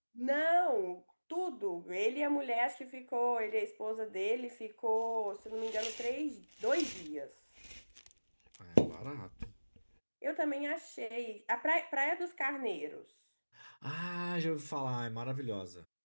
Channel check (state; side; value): inverted; both; correlation -1.00